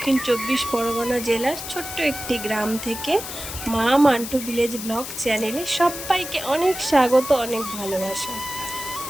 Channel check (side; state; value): left; noise; hiss, 8 dB below the sound